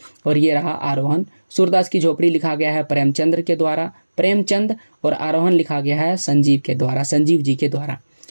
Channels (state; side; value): inverted; both; correlation -1.00